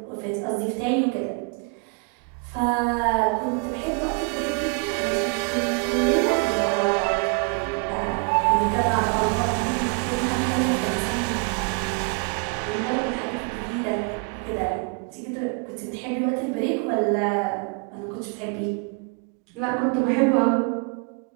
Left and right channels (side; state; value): left; quieter; 34.2 dB